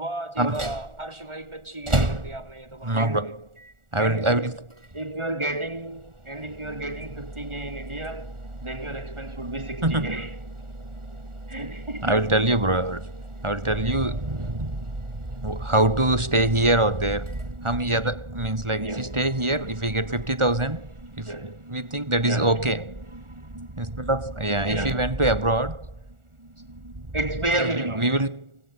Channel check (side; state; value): left; late; 1.4 ms